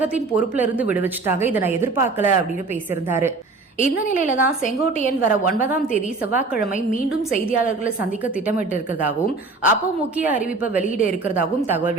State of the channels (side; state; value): left; quieter; 3.7 dB